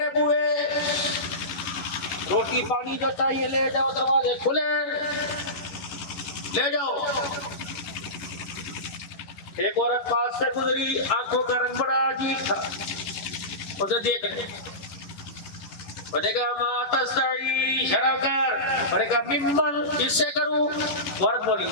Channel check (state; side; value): late; right; 11 ms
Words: بوئے، روٹی پانی جو چاہیے لے جاؤ، دروازے کھلے لے جاؤ. ایک عورت پاس سے گزری، آنکھوں کا رنگ بڑا عجیب تھا، اسے دیکھ لیں. میں نے کہا ما تستعی، شرع کر. میں نے کہا ممن، کس سے کروں؟ عورت بولی